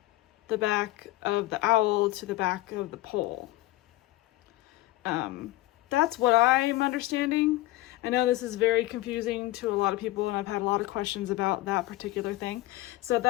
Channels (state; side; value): quieter; right; 17.5 dB